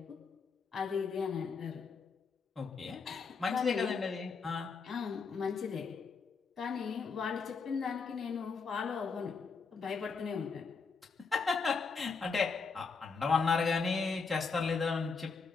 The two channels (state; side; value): quieter; right; 5.0 dB